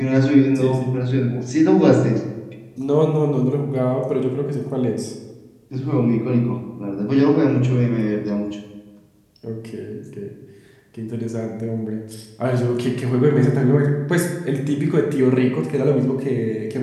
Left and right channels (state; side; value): identical; both; correlation 1.00